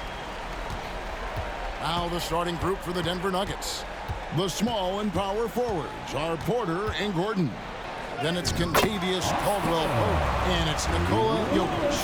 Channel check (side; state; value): both; identical; correlation 1.00